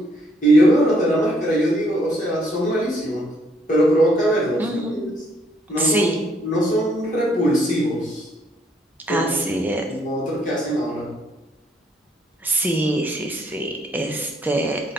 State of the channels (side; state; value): both; normal; correlation 0.69